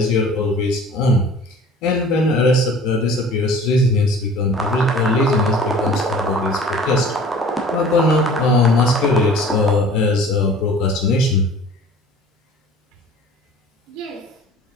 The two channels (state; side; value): normal; both; correlation 0.46